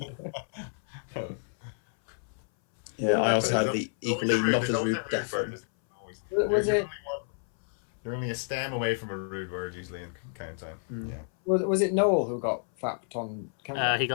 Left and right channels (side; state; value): right; silent; 58 dB below the other